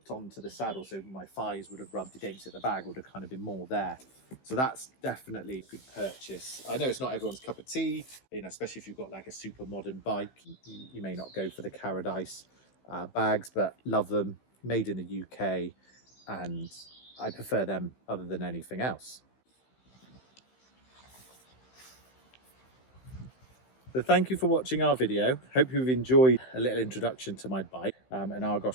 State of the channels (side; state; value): right; late; 15 ms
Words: onto the saddle, so my thighs would have rubbed against it. The bag would have kind of been more there. So that's definitely a good purchase. I know it's not everyone's cup of tea, you know, especially if you've got like a super modern bike. You may not go for the Carradice bags, but love them. Made in the UK, and I prefer them other than anything else. So thank you for watching our video. Hope you've enjoyed a little introduction to my bike and